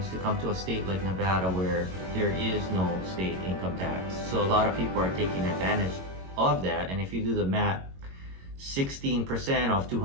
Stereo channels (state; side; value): late; left; 22 ms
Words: to come to a state like Nevada where there is no state income tax. So a lot of people are taking advantage of that. And if you do the math, 16% of